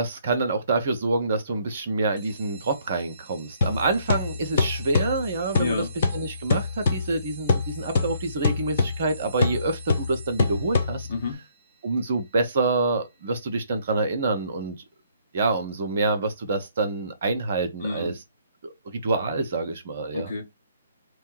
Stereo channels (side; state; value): both; inverted; correlation -0.67